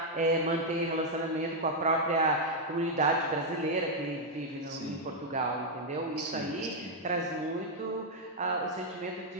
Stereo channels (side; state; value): both; normal; correlation -0.01